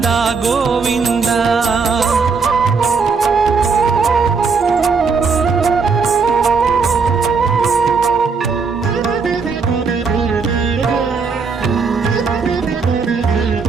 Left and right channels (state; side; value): quieter; left; 5.0 dB